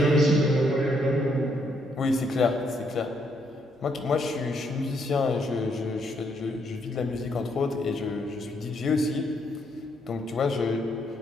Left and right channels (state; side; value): normal; both; correlation 0.74